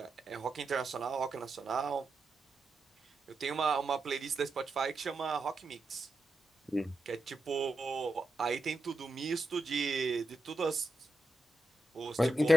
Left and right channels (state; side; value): normal; both; correlation 0.87